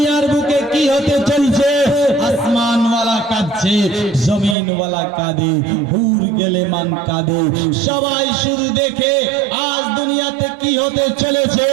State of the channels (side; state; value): left; drops out; at 4.5 s